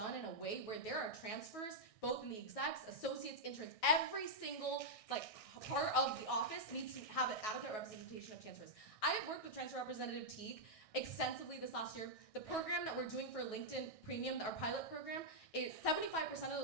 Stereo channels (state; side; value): late; right; 1.6 ms